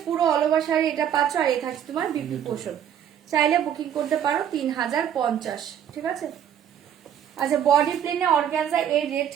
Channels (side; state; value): left; quieter; 9.4 dB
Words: পুরো অল ওভার শাড়ি এটা পাচ্ছ, আর এই থাকছে তোমার বিপি পোর্শন। চাইলে বুকিং করতে পারো 3050, ঠিক আছে। আচ্ছা বডি প্লেনে অর্গানজা এই রেড